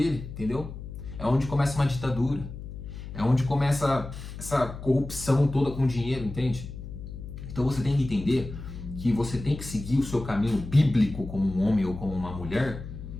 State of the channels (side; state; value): left; noise; hum, 10 dB below the sound